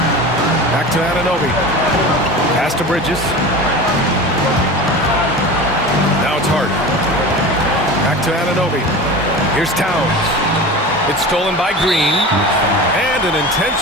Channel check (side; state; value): both; normal; correlation 0.32